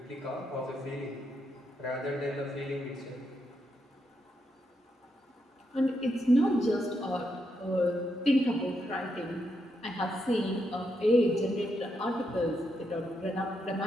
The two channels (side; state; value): both; normal; correlation 0.81